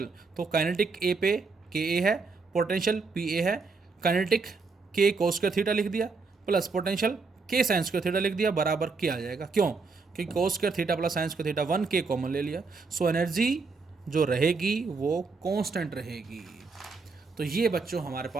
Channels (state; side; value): quieter; left; 4.4 dB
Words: तो काइनेटिक ए पे के ए है, पोटेंशियल पी ए है, काइनेटिक के कोस स्क्वायर थीटा लिख दिया प्लस पोटेंशियल के साइन स्क्वायर थीटा लिख दिया, बराबर के आ जाएगा। क्यों, क्योंकि कोस square theta plus sign square theta 1 के कॉमन ले लिया। सो एनर्जी जो रहेगी वो कांस्टेंट रहेगी। तो ये बच्चों हमारे